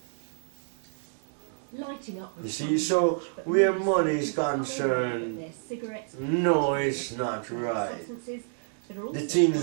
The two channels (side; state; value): left; silent; 59 dB below the other